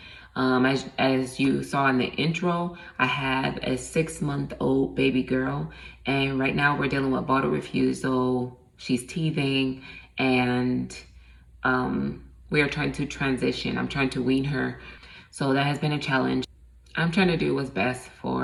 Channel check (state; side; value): identical; both; correlation 1.00